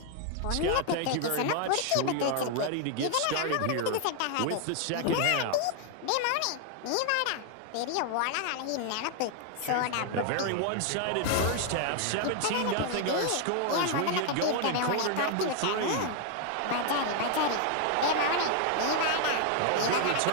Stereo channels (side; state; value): both; different; correlation 0.00